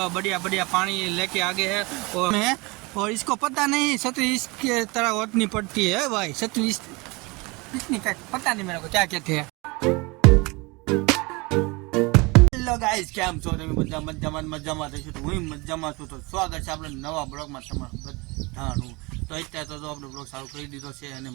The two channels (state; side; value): quieter; left; 25.8 dB